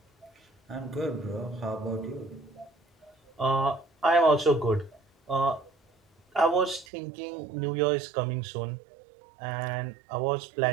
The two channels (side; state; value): left; drops out; at 6.9 s